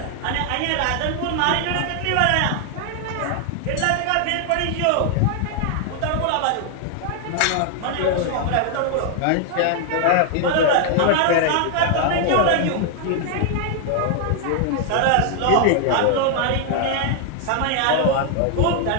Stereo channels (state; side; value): different; both; correlation 0.00